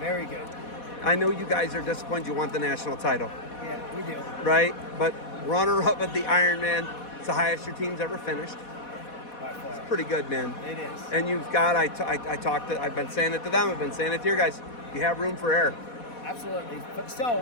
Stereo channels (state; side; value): late; right; 4.1 ms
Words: good. I know you guys are disappointed you want the national title. Yeah, we do. Right? But runner-up at the Ironman, it's the highest your team's ever finished. By far. It's pretty good, man. It is. And you've got, I've been saying it to them, I've been saying it to your guys, you have room for error. Absolutely.